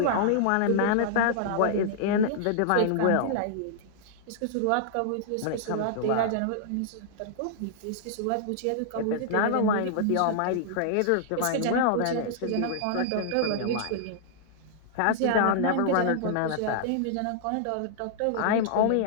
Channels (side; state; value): both; different; correlation -0.01